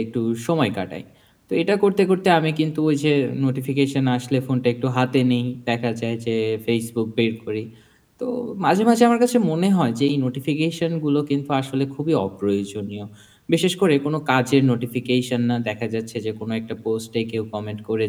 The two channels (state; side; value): identical; both; correlation 1.00